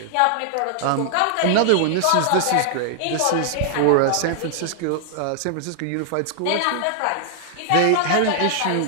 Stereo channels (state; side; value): different; both; correlation -0.01